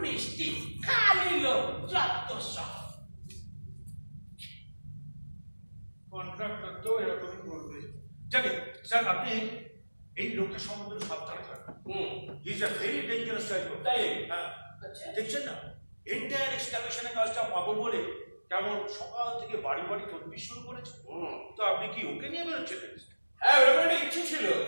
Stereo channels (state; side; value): inverted; both; correlation -1.00